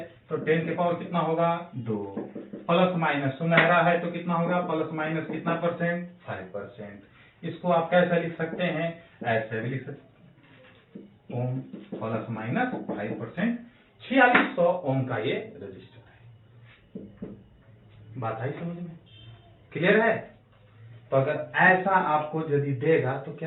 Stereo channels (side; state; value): both; identical; correlation 1.00